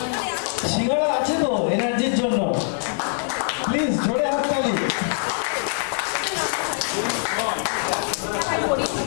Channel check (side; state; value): right; silent; 63 dB below the other